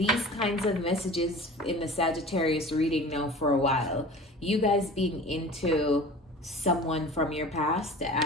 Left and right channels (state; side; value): normal; both; correlation 0.39